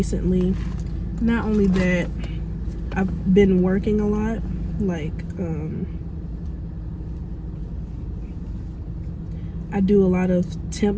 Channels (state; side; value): identical; both; correlation 1.00